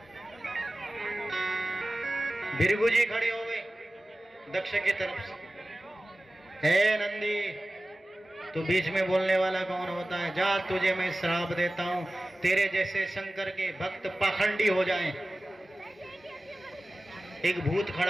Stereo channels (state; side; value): normal; both; correlation 0.96